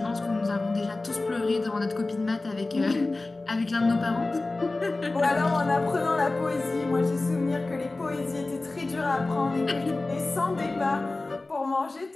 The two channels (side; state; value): right; quieter; 3.2 dB